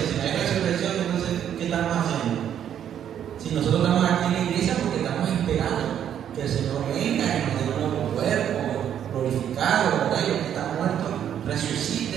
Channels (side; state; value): left; quieter; 9.6 dB